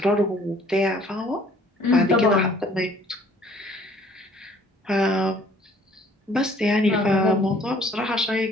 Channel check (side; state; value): both; normal; correlation 0.57